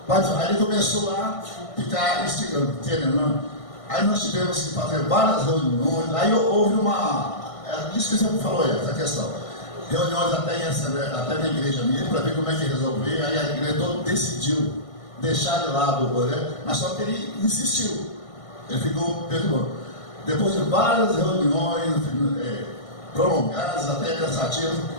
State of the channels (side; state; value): right; late; 1.6 ms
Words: aí ele começou a ficar instigando, querendo. Aí nós tivemos que fazer várias reuniões. Aí houve isso que você falou, essa questão. Reuniões até na igreja mesmo, para ver como é que resolver. Aí a igreja toda decidiu deixar de lado o Oré, mas só que ele insistiu. Ele ficou perdoando. Depois de várias reuniões prolongadas, até cansativas,